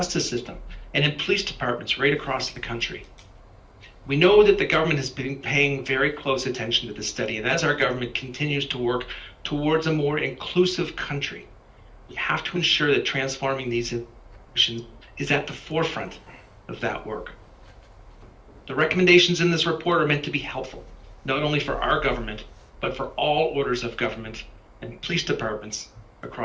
system and in police departments right across the country. We know that the government has been paying very close attention to this study, and as our government continues to work towards a more inclusive country, we have to ensure that transforming these institutions is at the forefront of that work. The recommendations in this report are meant to be helpful, not only for our government, but for all orders of government and police departments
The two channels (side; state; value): both; identical; correlation 1.00